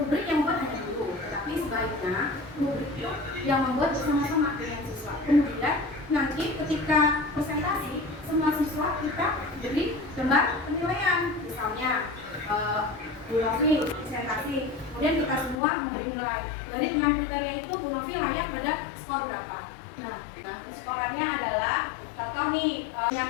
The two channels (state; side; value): drops out; right; at 15.6 s